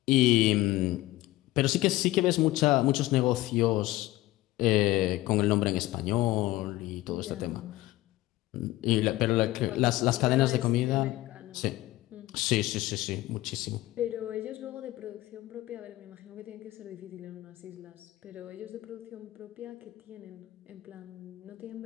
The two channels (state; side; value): quieter; right; 17.4 dB